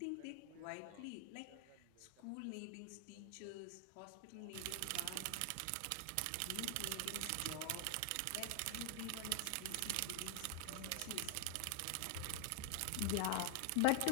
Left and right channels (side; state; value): both; different; correlation 0.00